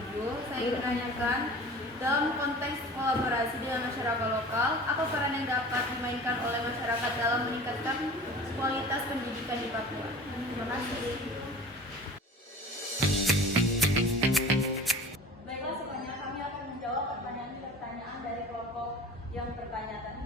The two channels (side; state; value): both; normal; correlation 0.40